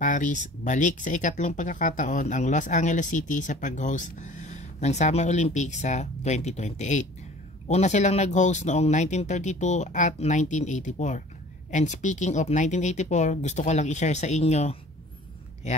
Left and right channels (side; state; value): both; normal; correlation 0.47